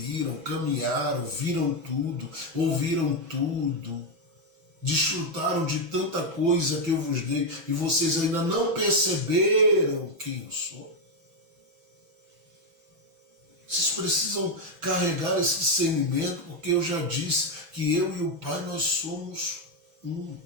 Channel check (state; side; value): late; left; 6.1 ms